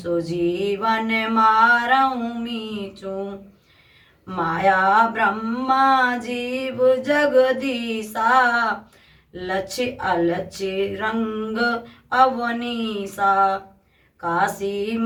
मारऊ मीचू। माया ब्रह्मा जीव जगदीसा, लक्ष्य अलक्ष्य रंग अवनीसा। काशी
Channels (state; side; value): identical; both; correlation 1.00